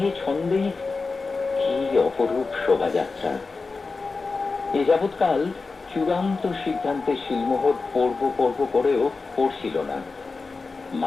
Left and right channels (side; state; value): right; quieter; 4.1 dB